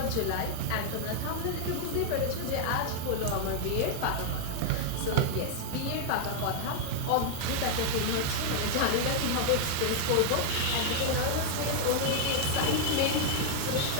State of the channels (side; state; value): both; different; correlation 0.00